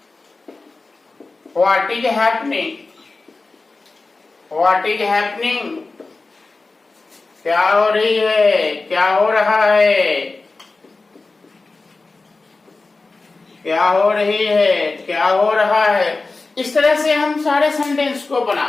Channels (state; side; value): quieter; right; 3.6 dB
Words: what is happening, what is happening, क्या हो रही है, क्या हो रहा है, क्या हो रही है, क्या हो रहा है। इस तरह से हम सारे सेंटेंस को